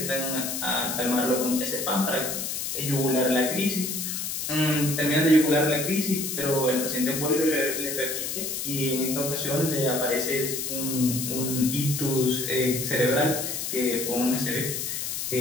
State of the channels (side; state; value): left; noise; hiss, 3 dB below the sound